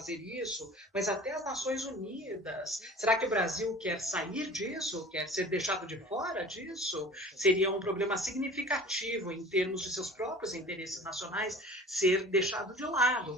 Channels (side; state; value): both; normal; correlation 0.42